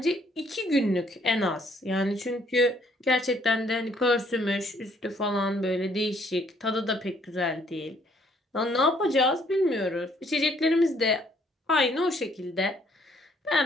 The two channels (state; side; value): normal; both; correlation 0.65